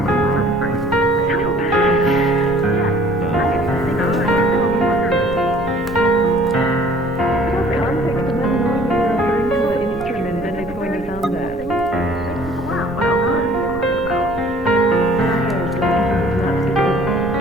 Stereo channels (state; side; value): noise; right; rumble, 16 dB below the sound